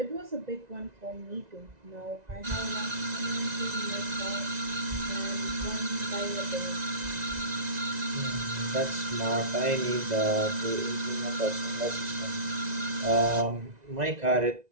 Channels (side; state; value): left; late; 1.9 ms